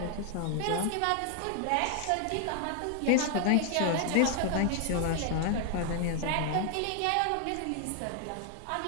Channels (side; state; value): both; different; correlation 0.00